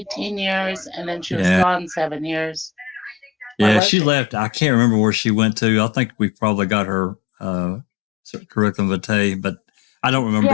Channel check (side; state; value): right; drops out; at 3.8 s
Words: years and then she was gone 7 years. Yeah, she left. I can't remember where she went to. I think we probably got her curriculum vitae, but I don't remember.